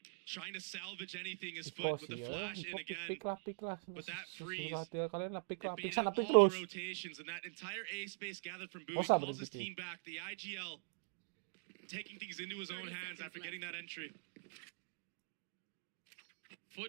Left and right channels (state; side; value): silent; left; digital silence